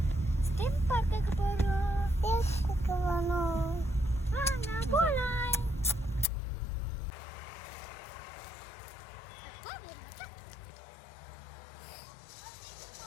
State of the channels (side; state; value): right; drops out; at 6.2 s